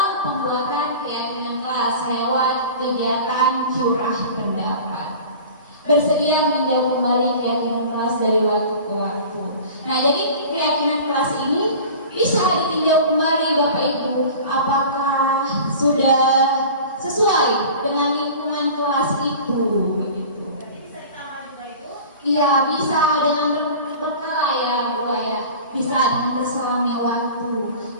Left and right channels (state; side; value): inverted; both; correlation -0.39